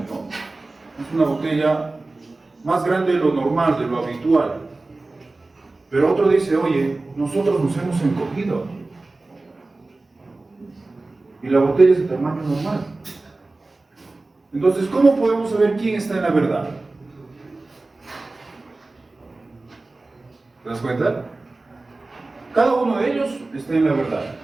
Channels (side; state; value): left; quieter; 3.2 dB